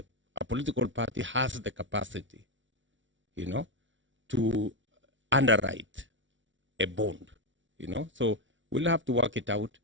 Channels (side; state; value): left; late; 0.55 ms